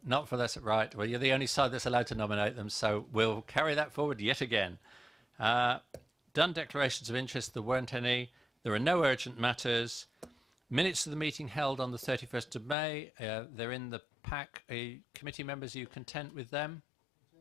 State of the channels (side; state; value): right; drops out; at 12.8 s